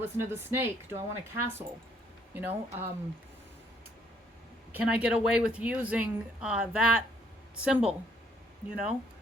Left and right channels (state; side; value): normal; both; correlation 0.66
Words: listen to the snake? Do I want a castle? You know, can I get away with using that symbol, you know,